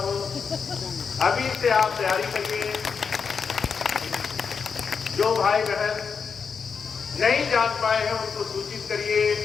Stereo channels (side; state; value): right; quieter; 5.9 dB